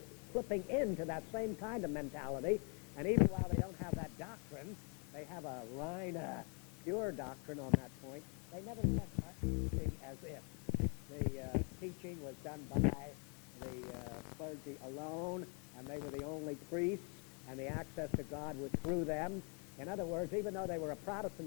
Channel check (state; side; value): quieter; right; 37.2 dB